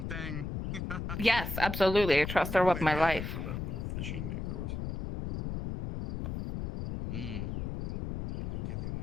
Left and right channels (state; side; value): noise; left; rumble, 4 dB below the sound